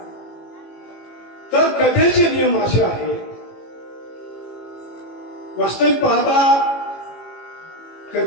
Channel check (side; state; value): right; late; 18 ms